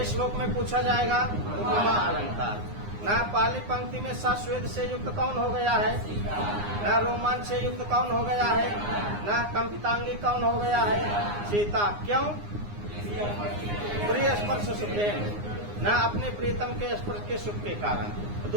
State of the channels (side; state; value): left; late; 9.7 ms